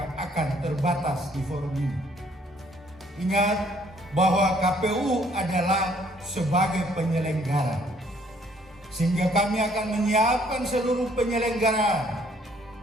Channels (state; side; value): normal; both; correlation 0.63